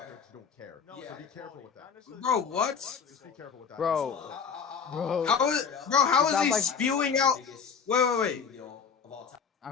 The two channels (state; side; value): quieter; right; 6.5 dB